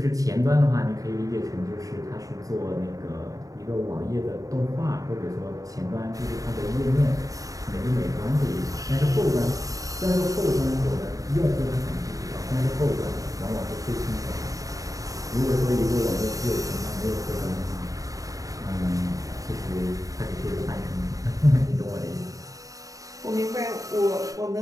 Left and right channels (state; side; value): late; left; 0.17 ms